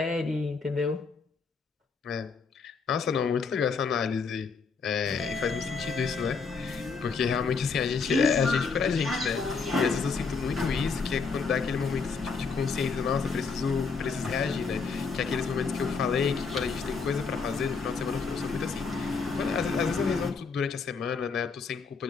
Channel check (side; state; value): right; quieter; 5.0 dB